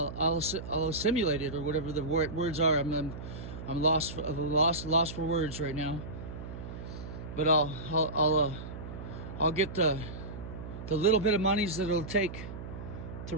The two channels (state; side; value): noise; right; hum, 10 dB below the sound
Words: assimilate it, or whatever the words are. I'm lost for words right now. But I'll get the little bit of monies that it'll take to